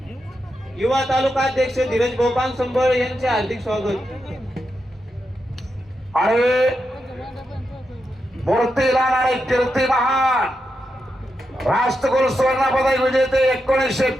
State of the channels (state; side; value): normal; both; correlation 0.86